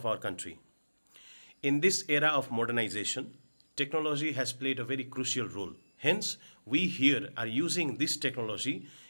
our country. In this era of modernization, technology has played a very crucial role. Hence, we here are using this technology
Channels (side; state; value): both; inverted; correlation -1.00